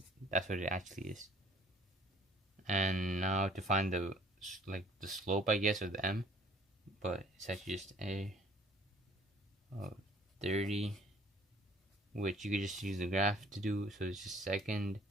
actually is. And now to find the slope, I guess, of the m, but it's actually just a of 30, which you could just use the graph to do. So it's just second,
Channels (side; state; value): both; normal; correlation 0.57